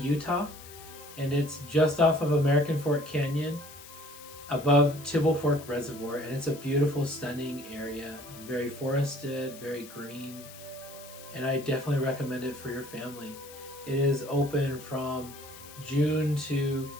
and it's just off of American Fork Canyon above Tibble Fork Reservoir, and it's a beautiful, stunning area, very forested, very green, and I definitely recommend it for your family. It is open from June to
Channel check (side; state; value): left; noise; hiss, 17 dB below the sound